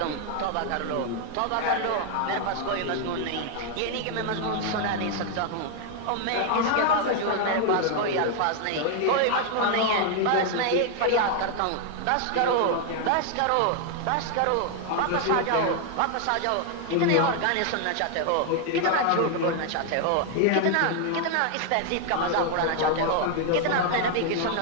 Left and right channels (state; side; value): different; both; correlation 0.00